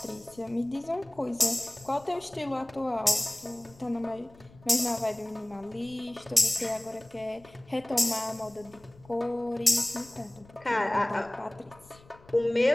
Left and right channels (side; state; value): left; noise; rumble, 24 dB below the sound